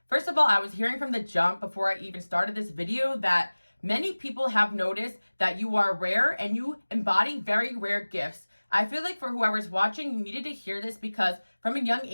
First of all, I was hearing from the jump before I even started this video that many people have noticed that you are rare and you embody very rare gifts. I feel like for whoever's watching, you needed to hear this because from a young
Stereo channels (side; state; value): both; inverted; correlation -1.00